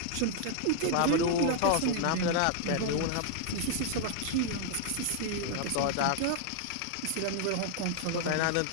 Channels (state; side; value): different; both; correlation 0.00